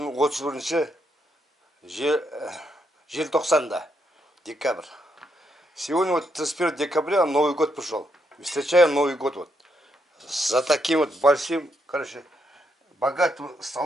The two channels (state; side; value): normal; both; correlation 0.78